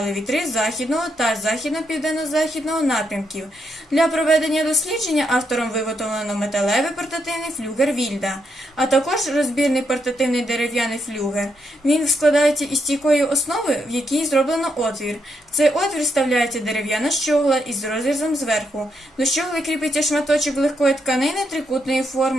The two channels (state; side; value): normal; both; correlation 0.79